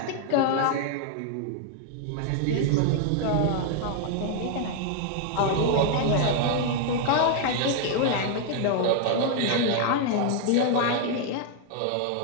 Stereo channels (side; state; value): both; different; correlation 0.00